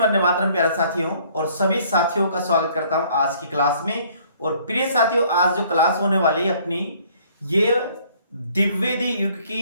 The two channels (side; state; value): both; inverted; correlation -0.59